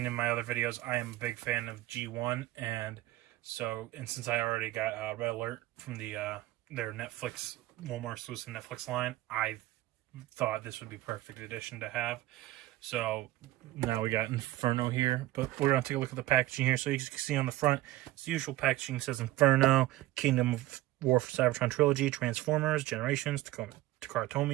in my other videos, I am a big fan of G1, and since I already got Red Alert from their Netflix, Walmart exclusive Netflix line, I thought this would be perfect addition to have. So now we got Inferno here, but we're going to take a look at the packaging here. So you can see on the front, it's the usual packaging. It says Inferno, Kingdom of War for Cybertron Trilogy, Transformers, Generations, Takara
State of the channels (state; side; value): quieter; left; 16.7 dB